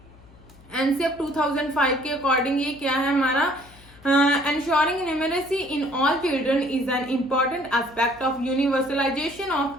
एनसीएफ 2005 के अकॉर्डिंग ये क्या है हमारा? Ensuring numeracy in all children is an important aspect of universalization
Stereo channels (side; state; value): left; noise; hum, 24 dB below the sound